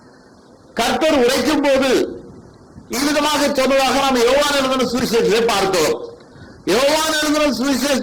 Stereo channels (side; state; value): both; identical; correlation 1.00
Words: கர்த்தர் உரைக்கும் போது இவ்விதமாக சொன்னதாக நாம் யோவான் எழுதின சுவிசேஷத்தை பார்த்தோம். யோவான் எழுதின